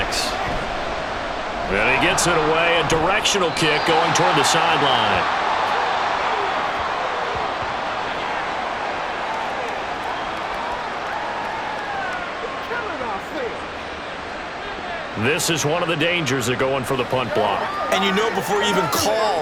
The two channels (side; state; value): both; identical; correlation 1.00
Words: And he gets it away. A directional kick going toward the sideline. This is one of the dangers of going for the punt block. And you know before you even